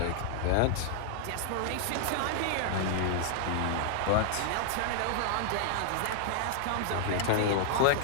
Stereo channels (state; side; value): different; both; correlation -0.01